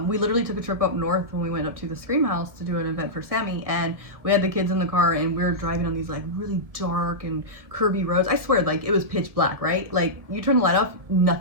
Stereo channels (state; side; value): late; left; 1.6 ms